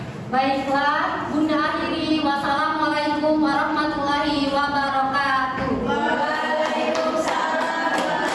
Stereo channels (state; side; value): identical; both; correlation 1.00